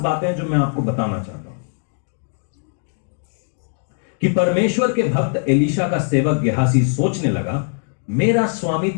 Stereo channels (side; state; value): right; silent; digital silence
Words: बातें जो मैं आपको बताना चाहता हूं कि परमेश्वर के भक्त एलीशा का सेवक गेहाजी सोचने लगा, मेरा स्वामी